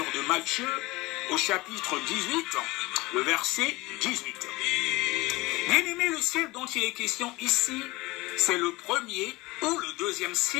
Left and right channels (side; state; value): right; quieter; 21.4 dB